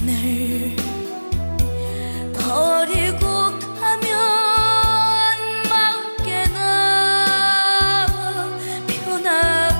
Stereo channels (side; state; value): both; inverted; correlation -1.00